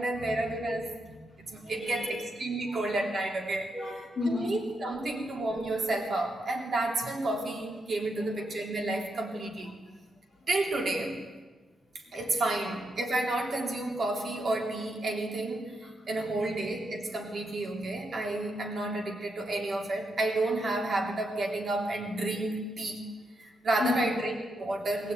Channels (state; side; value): normal; both; correlation 0.82